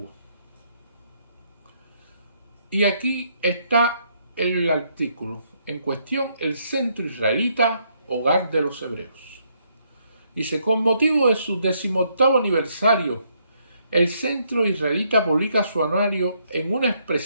Y aquí está el artículo en cuestión: el Centro Israelita, hogar de los hebreos. Dice: con motivo de su 18º aniversario, el Centro Israelita publica su anuario en una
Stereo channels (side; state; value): both; inverted; correlation -0.72